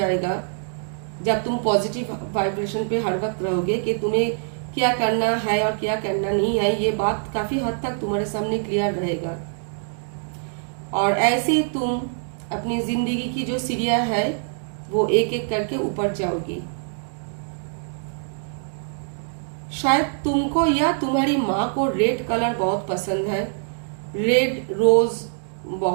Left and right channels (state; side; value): silent; left; 60 dB below the other